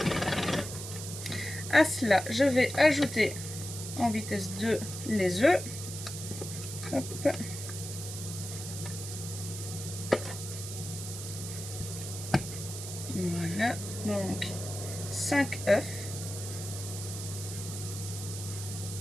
À cela, je vais ajouter en vitesse 2 les œufs. Hop. Voilà, donc 5 œufs.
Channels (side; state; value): right; noise; hiss, 8 dB below the sound